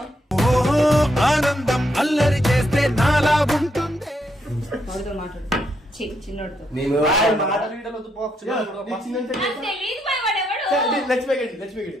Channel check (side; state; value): both; normal; correlation 0.78